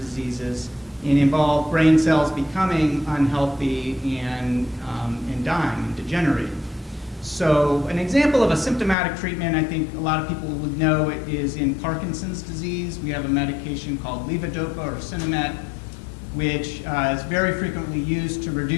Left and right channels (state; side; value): drops out; right; at 9.0 s